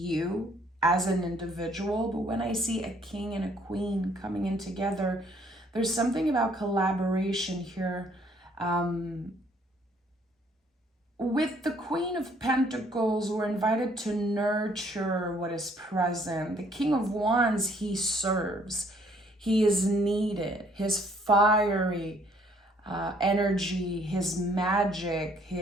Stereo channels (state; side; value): normal; both; correlation 0.63